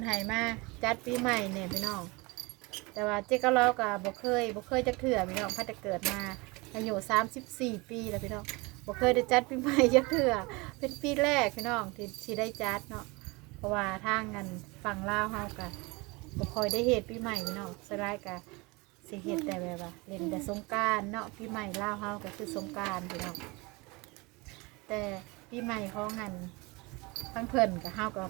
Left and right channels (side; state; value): left; quieter; 25.6 dB